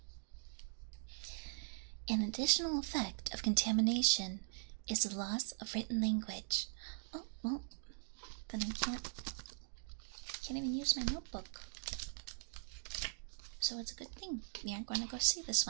An additional effect of contamination is the loss of written language. Oh, well, then I can't even use my notebook. So it's a good thing we aren't going to go see this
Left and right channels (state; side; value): silent; left; digital silence